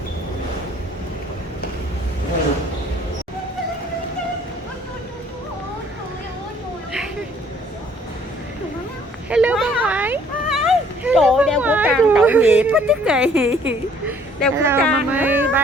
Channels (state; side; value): normal; both; correlation 0.59